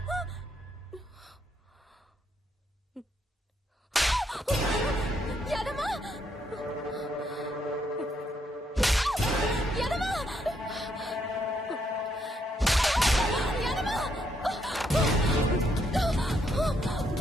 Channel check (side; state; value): both; normal; correlation 0.75